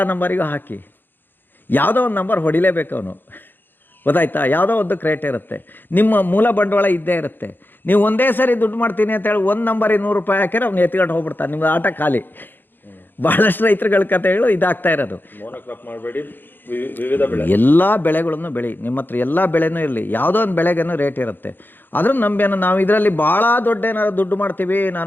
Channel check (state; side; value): late; right; 0.094 ms